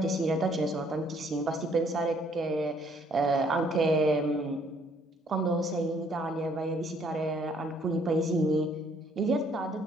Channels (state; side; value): normal; both; correlation 0.64